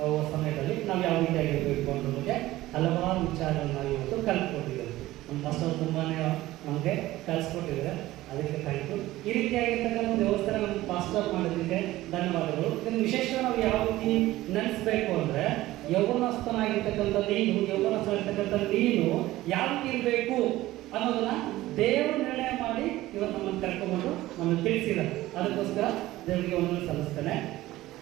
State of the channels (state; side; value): quieter; left; 16.6 dB